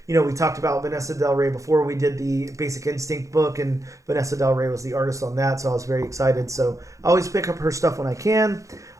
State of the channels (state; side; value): late; left; 0.15 ms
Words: We talked about Vanessa Del Rey before we did the Basic Instinct book, and Vanessa Del Rey was the artist on that, so I was very excited. So I always pick up her stuff when I can.